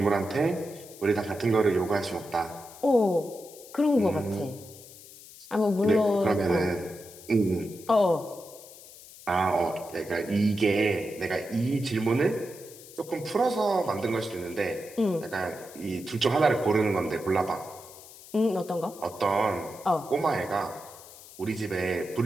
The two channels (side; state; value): left; noise; hiss, 19 dB below the sound